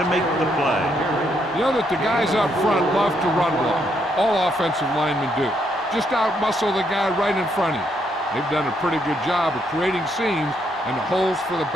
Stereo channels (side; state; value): both; normal; correlation 0.75